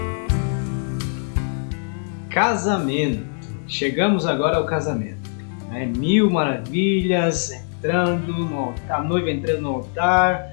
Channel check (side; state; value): right; silent; 64 dB below the other